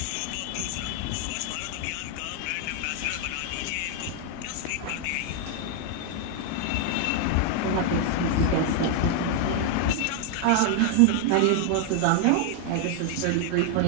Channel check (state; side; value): different; both; correlation 0.00